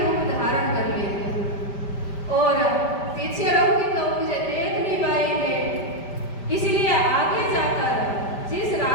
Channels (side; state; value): right; late; 5.1 ms